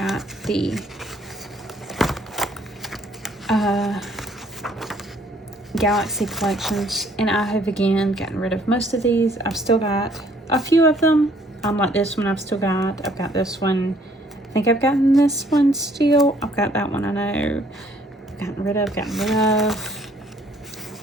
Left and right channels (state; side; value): normal; both; correlation 0.62